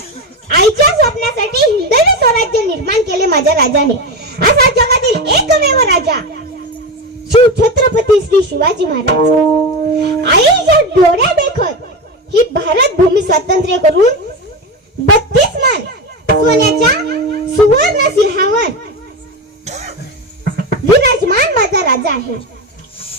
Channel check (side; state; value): both; normal; correlation 0.19